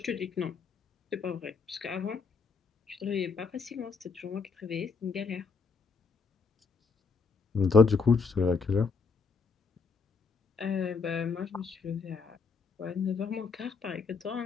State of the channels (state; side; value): quieter; right; 4.9 dB